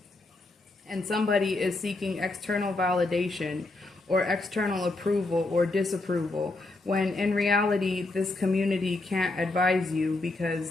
And somebody is seeking external validation or external approval or disapproval, when in reality this community can't advise you because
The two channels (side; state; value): right; quieter; 3.0 dB